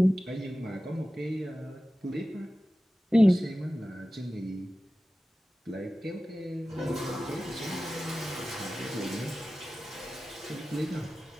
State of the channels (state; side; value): normal; both; correlation 0.95